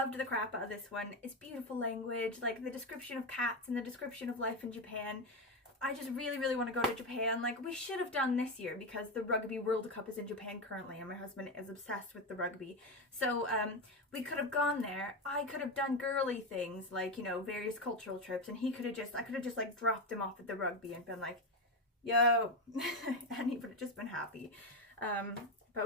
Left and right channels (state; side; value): normal; both; correlation 0.14